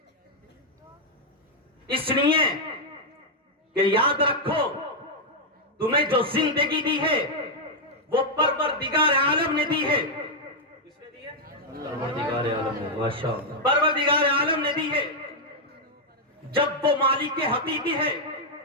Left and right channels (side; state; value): both; normal; correlation -0.03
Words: اس لیے کہ یاد رکھو تمہیں جو زندگی دی ہے وہ پروردگار عالم نے دی ہے۔ کس نے دی ہے؟ پروردگار عالم نے، ماشاءاللہ پروردگار عالم نے دی ہے۔ جب وہ مالک حقیقی ہے